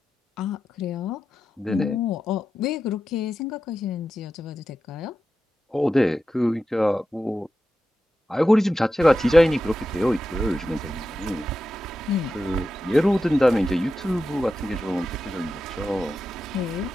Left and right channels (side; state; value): both; normal; correlation 0.90